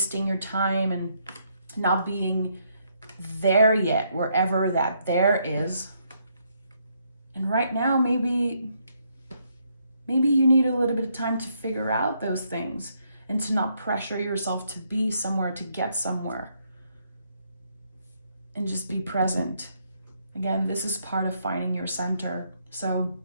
your time and not being there yet, wherever that there is. And right now, maybe you need a little bit of time to figure out those things and to not pressure yourself to be somewhere, to get somewhere. And just be present. Again, this is part of finding your center. So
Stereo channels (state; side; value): inverted; both; correlation -0.74